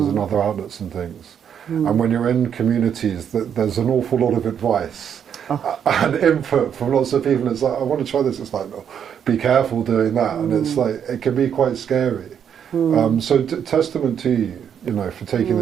in other outlets and things. And when you're in communities, there's an awful lot of advice and input from lots of people. It's like, I want to try this. It's like, no, be careful doing that. And it's like, it can be quite scary. So testament to you, you know, for taking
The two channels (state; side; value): quieter; left; 8.3 dB